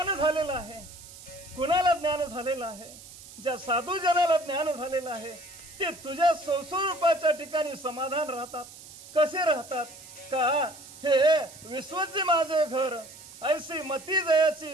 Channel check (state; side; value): noise; right; hiss, 17 dB below the sound